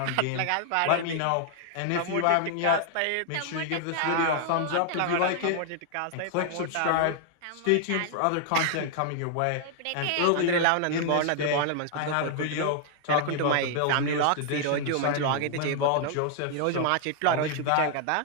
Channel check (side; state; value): both; different; correlation 0.00